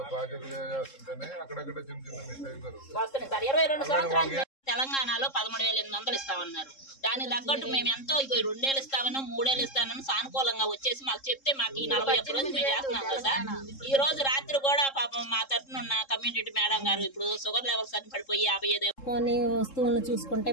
తెలంగాణలో 13,800 ఇస్తామన్నారు. దానికి తగ్గట్టు మేము ఎంతో 2 ఏళ్ళు ఇస్తామని 3 ఏళ్ళు ఇస్తామని సానుకూలంగా వచ్చేసి మాకు చెప్తే మాకు ఈ 41 రోజులు మేము చేస్తున్నాం కదా. ఈ రోజు రాత్రి కూడా పాపం మా తరఫున ఉన్న కమ్యూనిటీ మేడం గారు ఇప్పుడు షుగర్ లెవెల్స్ అని పడిపోయి 55 వస్తువులను చూసుకుంటే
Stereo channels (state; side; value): late; right; 3.7 ms